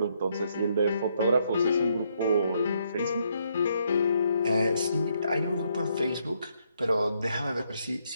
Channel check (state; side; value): inverted; both; correlation -0.74